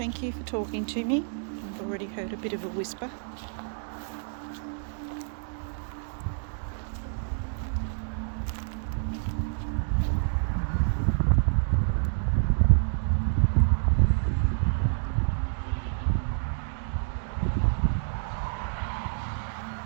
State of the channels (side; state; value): left; silent; 59 dB below the other